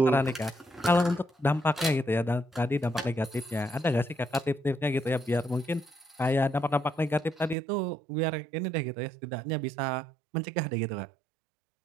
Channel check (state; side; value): drops out; left; at 7.6 s